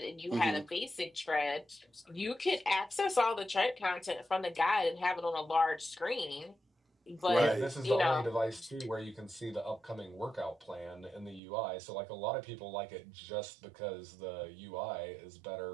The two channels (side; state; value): left; drops out; at 11.4 s